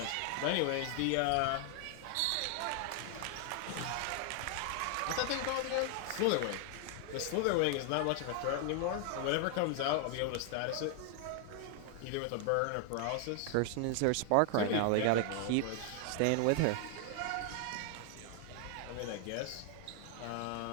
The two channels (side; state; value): both; different; correlation 0.00